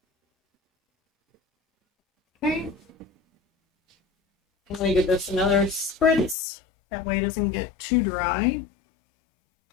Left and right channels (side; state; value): right; drops out; at 6.4 s